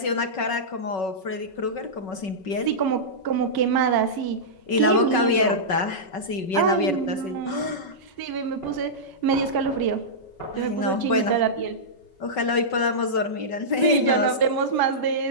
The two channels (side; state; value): right; late; 5.3 ms